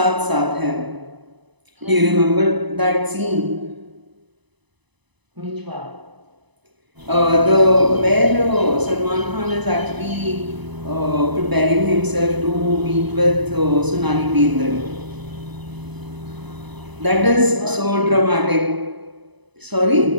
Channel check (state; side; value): late; left; 1.0 ms